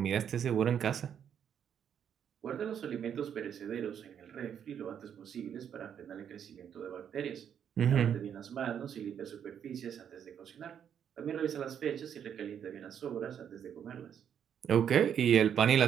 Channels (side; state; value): left; quieter; 8.6 dB